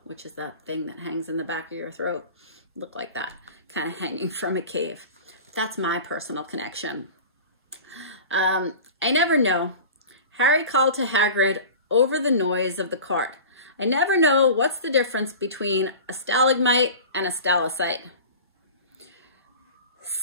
which is that thing that hangs in the back of your throat. Look like that, kind of hanging from a cave. That's my personal connection. I never know. Harry called to Hagrid over the noise of the cart. "I never know what's the difference between a stalagmite and a stalactite."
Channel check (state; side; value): inverted; both; correlation -0.36